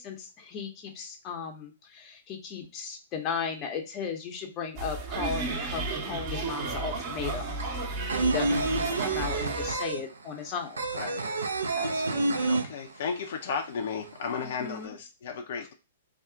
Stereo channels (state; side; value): inverted; both; correlation -0.46